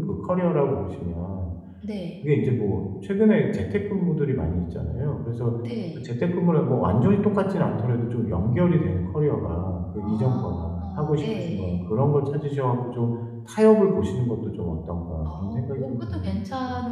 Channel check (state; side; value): identical; both; correlation 1.00